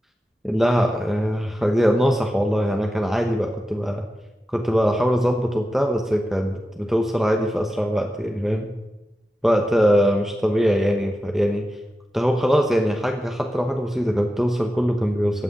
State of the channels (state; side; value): normal; both; correlation 0.91